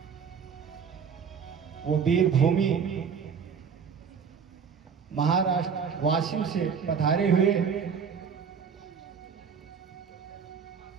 वो वीर भूमि महाराष्ट्र वाशिम से पधारे हुए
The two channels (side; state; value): left; quieter; 6.6 dB